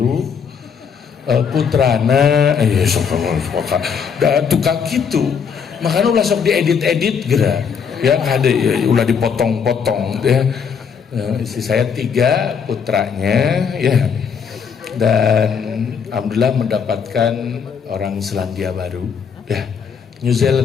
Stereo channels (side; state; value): right; quieter; 6.6 dB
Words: putrana tukang gitu, makanya ulah sok diedit-edit gerak ya, ada ya, ulah dipotong-potong ya. Istri saya 3 putranya ya, dan alhamdulillah mendapatkan orang Selandia Baru ya, New